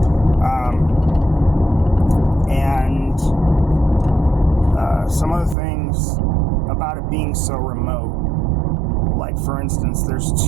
And some of the things about it being so remote, like for instance, there's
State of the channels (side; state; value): left; drops out; at 5.6 s